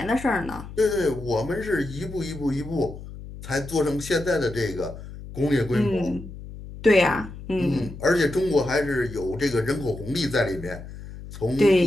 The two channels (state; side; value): noise; left; hum, 13 dB below the sound